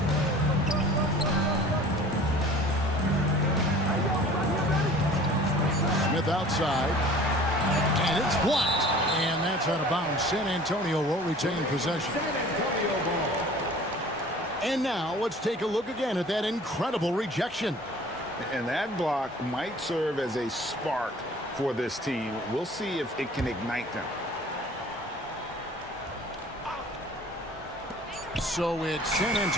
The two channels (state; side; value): normal; both; correlation 0.47